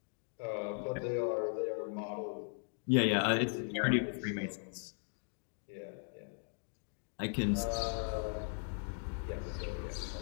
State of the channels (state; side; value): silent; right; 52 dB below the other